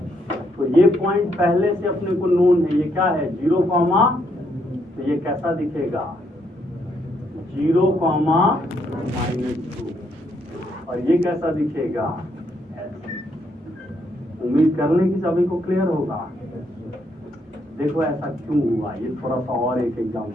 तो ये पॉइंट पहले से अपने को नोन है, ये क्या है? 0 कॉमा, तो ये कैसा दिखेगा? 0 कॉमा -2। और ये कैसा दिखेगा? ऐसे। उम्मीद कर लें कि सभी को क्लियर होगा। देखो ऐसा क्यों हुआ, ये थोड़ा सा और एक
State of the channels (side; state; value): both; normal; correlation 0.74